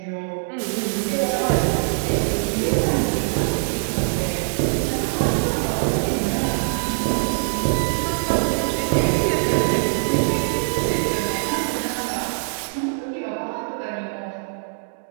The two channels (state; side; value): silent; left; digital silence